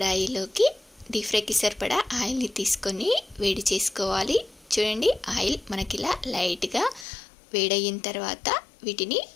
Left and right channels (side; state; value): right; drops out; at 7.1 s